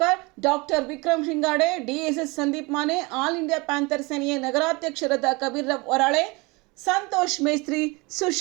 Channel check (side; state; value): left; quieter; 25.9 dB